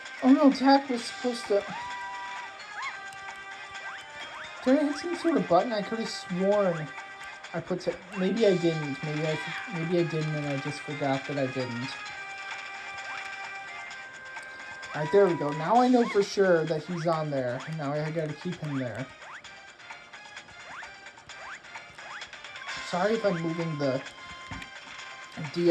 Oh no, Tak was supposed to... Did I hit some sort of button? I could have sworn I put... Maybe I didn't. Maybe I didn't and I just forgot that I didn't. Alright, there we go. Now I know for sure that he's on there. Now I gotta keep him there. Sorry if I'm moving the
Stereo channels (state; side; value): identical; both; correlation 1.00